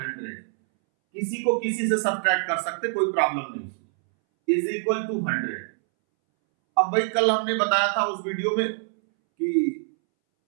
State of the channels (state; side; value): silent; left; 62 dB below the other